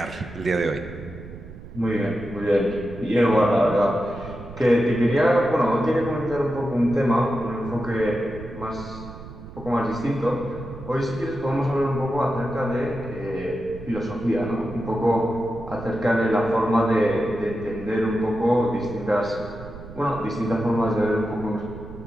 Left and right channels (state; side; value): noise; right; rumble, 14 dB below the sound